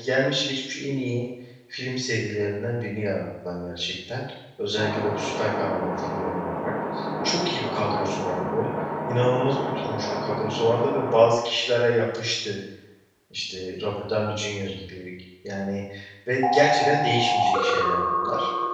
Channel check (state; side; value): identical; both; correlation 1.00